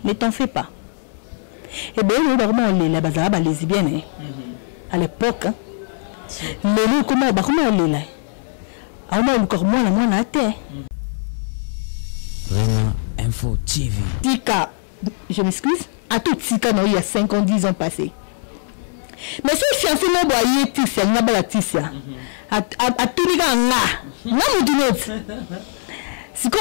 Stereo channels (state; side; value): silent; right; 66 dB below the other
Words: Ne t'en fais pas. Et bien, nous, vraiment, on est là, les lesbiennes, à l'époque, l'élo, comment on est là? Ah, moi, encore moins, la moins à terre. Vraiment Info TV. Tika, je m'excuse, à tout Tika, il y a 5 ans, 10 ans passés. Mais si je suis en train de voir Tissia, il n'y a pas la Tissia. À tout les gars, là, si on